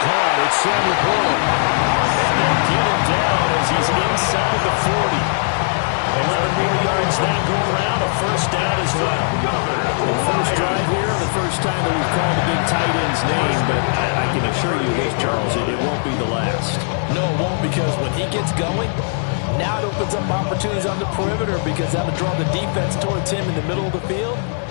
caught. It's Sam Laporta. And they'll get him down as he's inside the 40. 11 more yards that go around, a first down as well. The first drive here, the first time that we've called the big tight end's name, but I can assure you this, Charles, it won't be the last. No, it won't, because when he gets going, now it opens up opportunities on the perimeter because that'll draw the defense towards him in the middle of the field.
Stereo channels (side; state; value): right; silent; digital silence